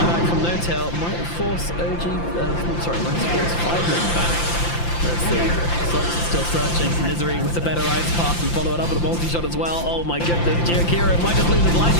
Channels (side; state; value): right; late; 5.8 ms